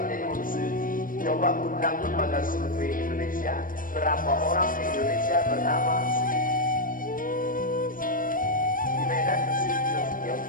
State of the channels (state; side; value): late; right; 0.40 ms